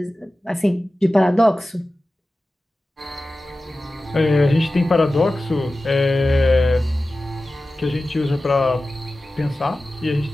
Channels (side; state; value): both; normal; correlation 0.95